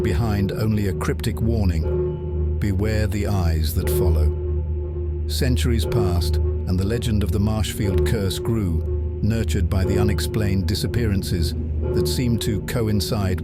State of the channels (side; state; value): both; identical; correlation 1.00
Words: behind only a cryptic warning: beware the eyes that follow. Centuries passed, and the legend of the Marshfield Curse grew, nurtured by the unexplained disappearances that seemed to coincide